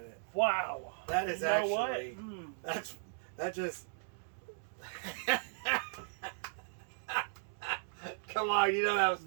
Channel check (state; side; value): silent; left; digital silence